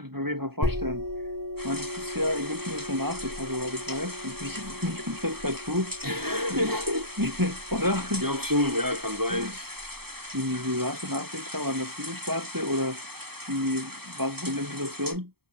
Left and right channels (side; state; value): left; late; 0.96 ms